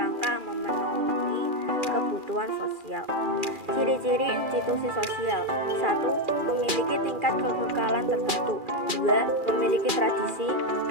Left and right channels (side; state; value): left; late; 2.4 ms